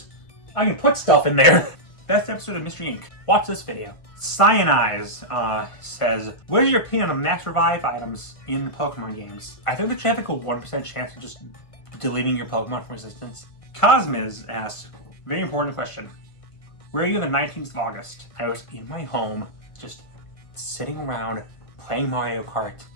I can put stuff in there. Best episode of Mystery Inc. Watch this video. Cyanize says, what is your opinion on max revive items in Pokemon games? I think there should have like a 1% chance of just deleting your Pokemon from Resistance. Cosmiz asks, very important question. Where are you on the 19th of August? I was in my home, just sitting around, playing Mario Kart.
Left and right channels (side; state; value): right; late; 1.5 ms